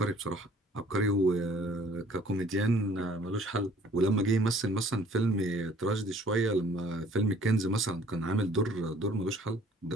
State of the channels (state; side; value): normal; both; correlation 0.55